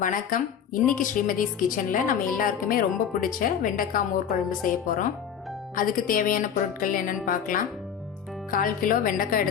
வணக்கம். இன்னைக்கு ஸ்ரீமதிஸ் கிச்சன்ல நம்ம எல்லாருக்குமே ரொம்ப பிடிச்ச வெண்டைக்காய் மோர் குழம்பு செய்ய போறோம். அதுக்கு தேவையான பொருட்கள் என்னன்னு பார்க்கலாம். 1/4 கிலோ வெண்டைக்காய்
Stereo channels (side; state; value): right; quieter; 8.1 dB